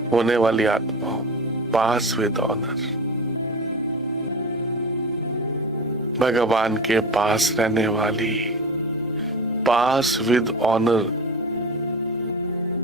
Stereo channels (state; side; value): normal; both; correlation 0.29